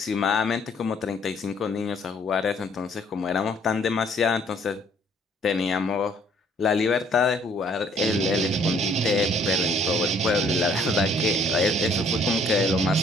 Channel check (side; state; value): both; normal; correlation 0.61